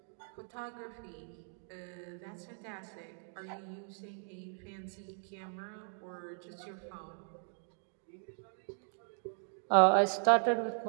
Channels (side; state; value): left; silent; 53 dB below the other